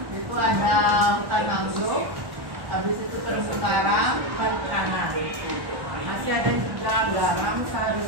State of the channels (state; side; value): late; left; 1.1 ms